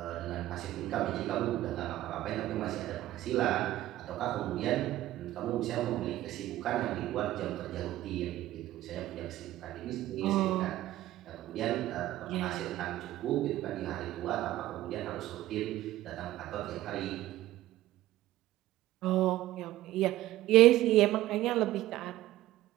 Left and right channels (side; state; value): left; quieter; 15.1 dB